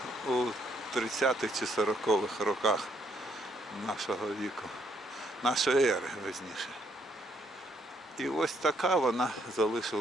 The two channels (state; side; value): normal; both; correlation 0.71